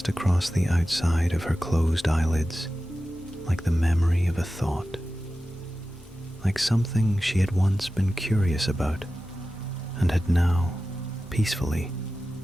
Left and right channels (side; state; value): both; normal; correlation 0.94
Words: across the outside of her closed eyelids like the memory of a thought, like something she had once been curious about and had now peacefully